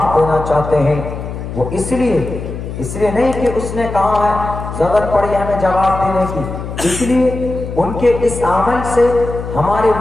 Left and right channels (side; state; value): left; noise; hum, 8 dB below the sound